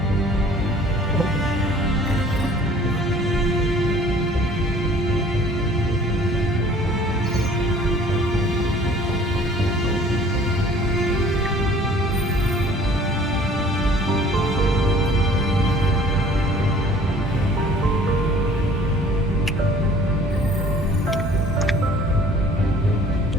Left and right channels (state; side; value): normal; both; correlation 0.52